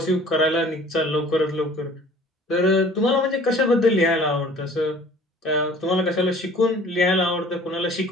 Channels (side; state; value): both; normal; correlation 0.50